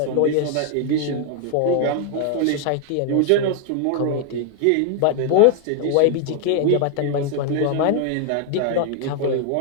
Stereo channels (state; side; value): different; both; correlation 0.00